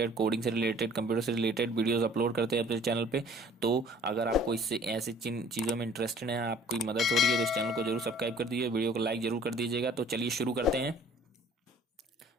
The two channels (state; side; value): normal; both; correlation 0.53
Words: कोडिंग से रिलेटेड, कंप्यूटर से रिलेटेड वीडियोस अपलोड करते हैं अपने चैनल पे। तो अगर आपको इससे ऐसे चीज़ों में इंटरेस्टेड है, आपकी मदद हो रही है, तो इस चैनल को जरूर सब्सक्राइब कर दीजिए, वीडियो को लाइक जरूर कर दीजिएगा। तो चलिए शुरू करते हैं।